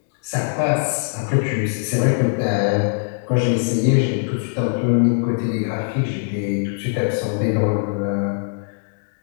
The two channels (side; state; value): right; silent; digital silence